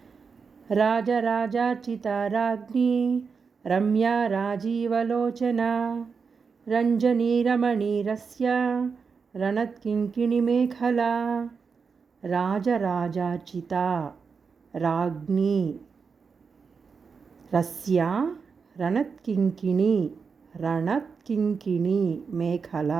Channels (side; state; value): left; quieter; 5.4 dB